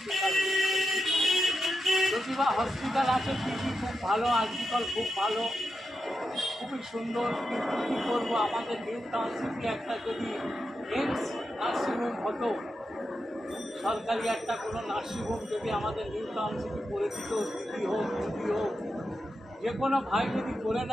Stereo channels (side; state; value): both; normal; correlation 0.88